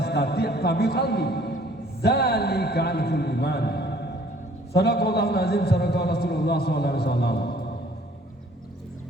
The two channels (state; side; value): normal; both; correlation 0.57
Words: fa bi qalbihi, dzalika al-ful iman. Sadaqallahu azim, sadaqa Rasulullah sallallahu alaihi wasallam.